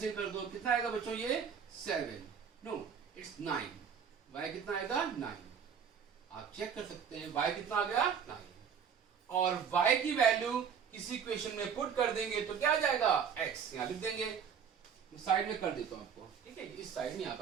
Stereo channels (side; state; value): left; quieter; 7.3 dB